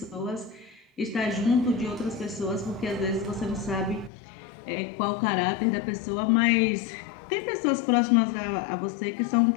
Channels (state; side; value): drops out; right; at 4.1 s